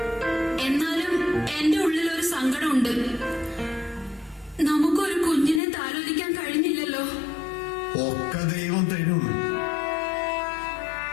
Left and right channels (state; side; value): drops out; right; at 5.6 s